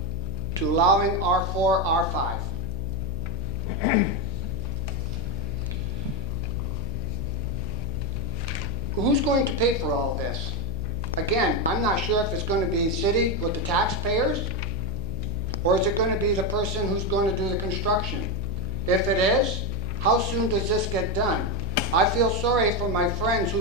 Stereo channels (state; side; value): noise; left; hum, 3 dB below the sound